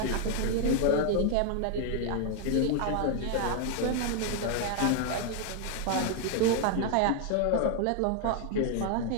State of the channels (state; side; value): different; both; correlation 0.00